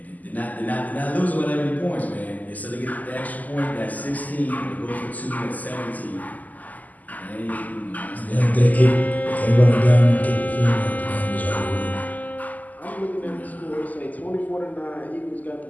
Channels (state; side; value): late; right; 0.080 ms